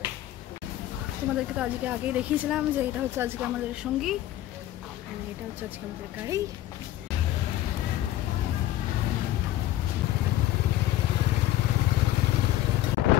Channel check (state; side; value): quieter; right; 13.8 dB